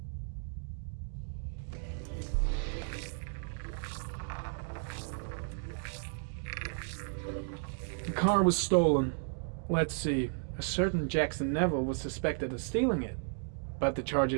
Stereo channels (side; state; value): left; silent; 55 dB below the other